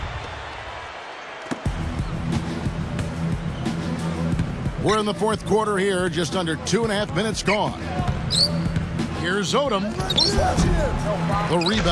We're in the fourth quarter here, just under 2.5 minutes gone. Here's Odom. The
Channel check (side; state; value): both; identical; correlation 1.00